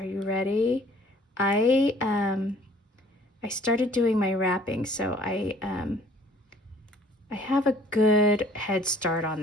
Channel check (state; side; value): normal; both; correlation 0.56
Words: you ready? I started doing my wrapping, so I have a good head start on